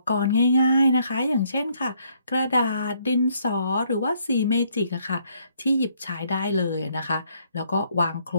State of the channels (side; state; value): both; inverted; correlation -0.69